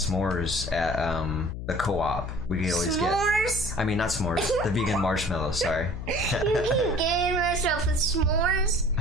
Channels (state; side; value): noise; left; hum, 7 dB below the sound